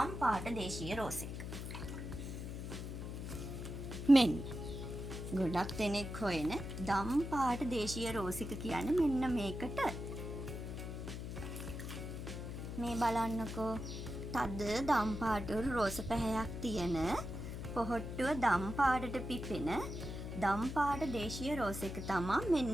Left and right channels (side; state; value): left; noise; hum, 6 dB below the sound